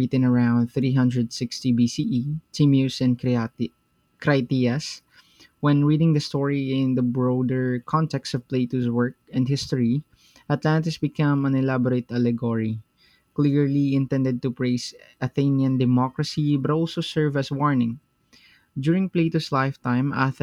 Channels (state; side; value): identical; both; correlation 1.00